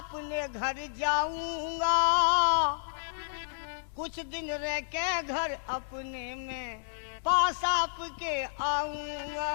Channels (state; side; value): silent; right; 57 dB below the other